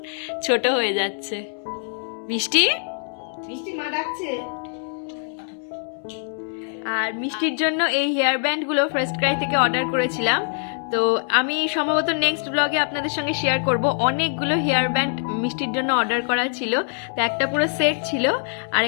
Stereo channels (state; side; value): silent; right; 63 dB below the other